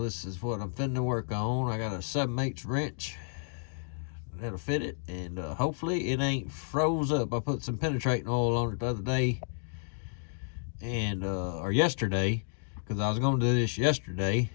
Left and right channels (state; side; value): silent; right; digital silence